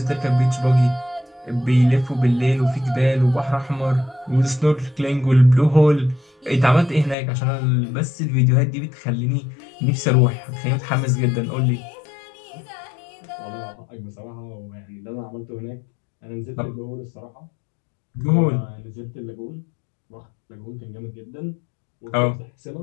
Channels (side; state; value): right; drops out; at 7.2 s